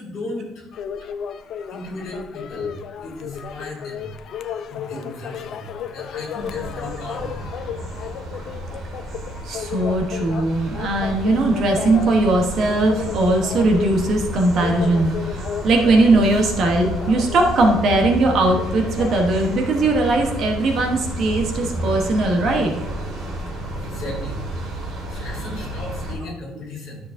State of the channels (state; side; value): normal; both; correlation 0.72